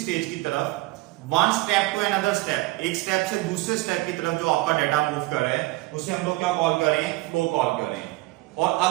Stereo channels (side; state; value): left; quieter; 20.6 dB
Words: की तरफ, one step to another step, एक स्टेप से दूसरे स्टेप की तरफ जो आपका डेटा मूव कर रहा है उसे हम लोग क्या कॉल कर रहे हैं, फ्लो कॉल कर रहे हैं। और